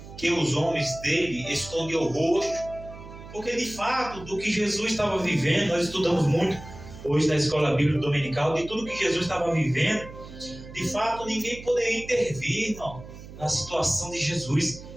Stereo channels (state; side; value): noise; right; hum, 15 dB below the sound